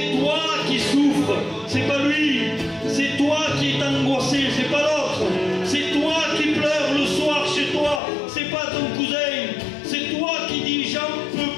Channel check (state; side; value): drops out; right; at 8.0 s